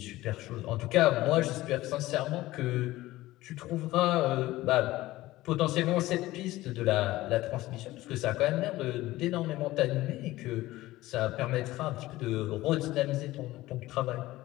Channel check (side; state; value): right; quieter; 17.3 dB